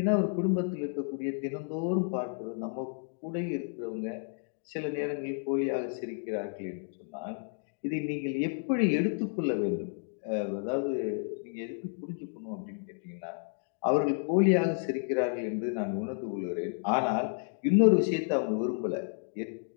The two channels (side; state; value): right; silent; 57 dB below the other